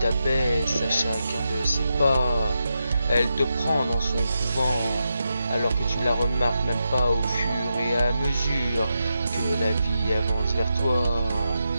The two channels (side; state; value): both; inverted; correlation -0.87